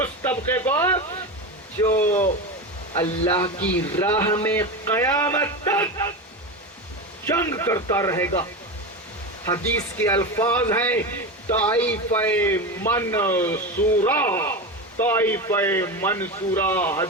طبقے کو جو اللہ کی راہ میں قیامت تک جنگ کرتا رہے گا۔ حدیث کے الفاظ ہیں طائفہ منصورہ،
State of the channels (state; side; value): normal; both; correlation 0.21